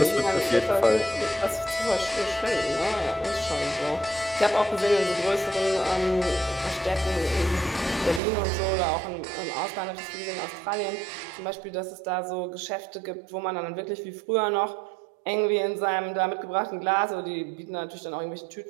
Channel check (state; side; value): drops out; left; at 8.2 s